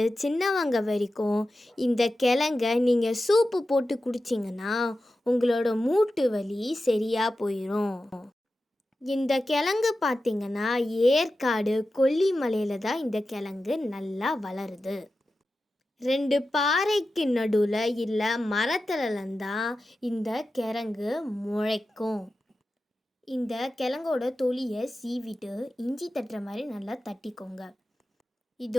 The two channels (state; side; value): normal; both; correlation 0.93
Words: சின்னவங்க வரைக்கும் இந்த கிழங்க நீங்கள் சூப்பு போட்டு குடிச்சிங்கன்னா உங்களோட மூட்டு வலி சரியாக போயிடும். இந்த கிழங்கு பார்த்திங்கன்னா ஏற்காடு கொல்லிமலையில் தான் இந்த கிழங்கு நல்லா வளருது. 2 பாறைக்கு நடுவில் இல்லை மரத்துலலாம் தான் இந்த கிழங்கு முளைக்கும். இந்த கிழங்கோட தொலியை சீவிட்டு இஞ்சி தட்டுற மாதிரி நல்லா தட்டிக்கோங்க.